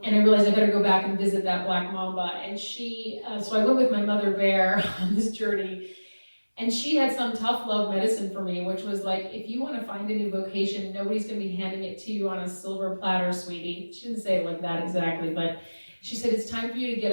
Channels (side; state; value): both; inverted; correlation -1.00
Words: I realized I better go back and visit that black mamba. And so I went with my mother bear on this journey. And she had some tough love medicine for me, which was like, if you want to find a new vocation, nobody's going to be handing it to you on a silver platter, sweetie. She didn't say it like that exactly, but she said, it's time for you to get